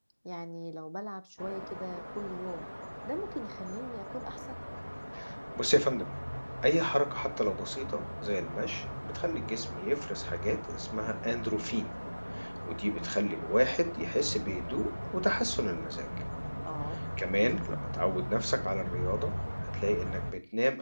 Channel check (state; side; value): inverted; both; correlation -1.00